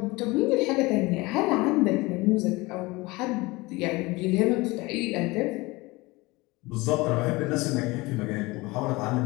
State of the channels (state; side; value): quieter; right; 22.5 dB